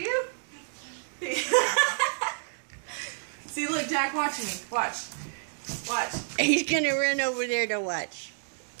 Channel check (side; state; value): left; silent; digital silence